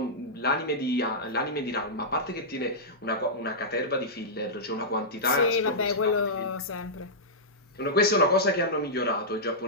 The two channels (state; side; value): normal; both; correlation -0.12